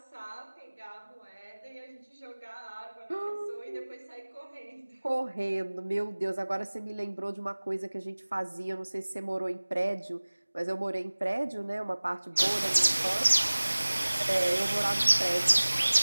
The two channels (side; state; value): both; inverted; correlation -1.00